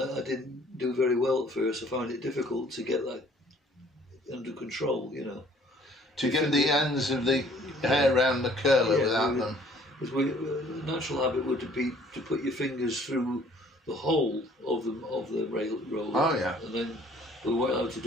I didn't do very well at first. I found it difficult to get that under control, you know. To get the ends of the hair around the curler without them. Because natural habit would be to put your fingers through the hole of the roller. Oh, yeah. And then we weren't allowed to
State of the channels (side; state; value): both; normal; correlation 0.57